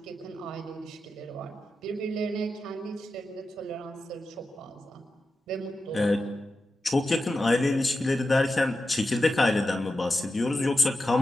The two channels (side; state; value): both; normal; correlation 0.91